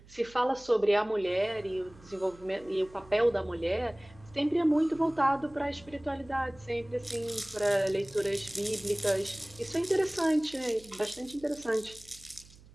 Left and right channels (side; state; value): right; noise; hum, 23 dB below the sound